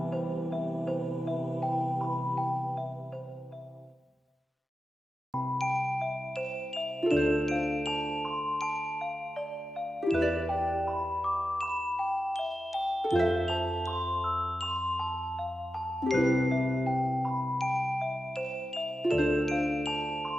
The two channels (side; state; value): both; normal; correlation 0.92